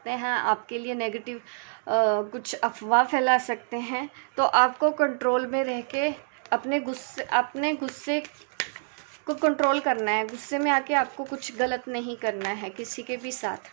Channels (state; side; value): silent; left; digital silence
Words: हैं, आपके लिए नेगेटिव कुछ अफवाह फैला सकते हैं। तो आपको कंट्रोल में रह के अपने गुस्से को कंट्रोल करना है। गुस्से में आके आपको कुछ गलत नहीं करना है किसी के भी साथ।